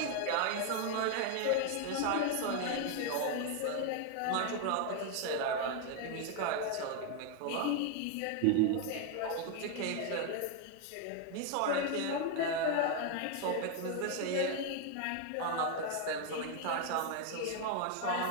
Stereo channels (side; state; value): both; different; correlation 0.01